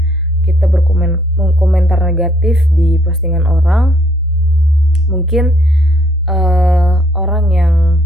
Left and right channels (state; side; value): normal; both; correlation 0.67